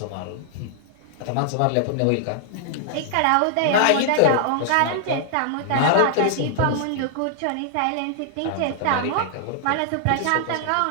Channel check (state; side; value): different; both; correlation -0.01